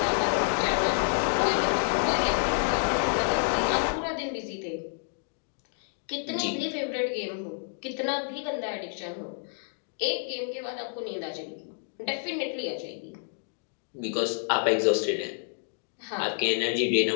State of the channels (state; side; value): silent; right; digital silence